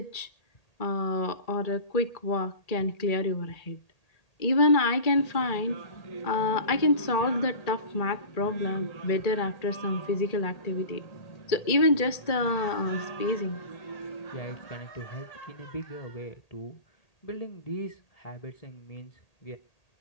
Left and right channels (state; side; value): late; right; 1.8 ms